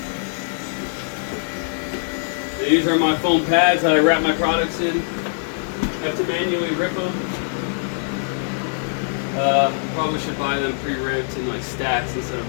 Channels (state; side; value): silent; right; 64 dB below the other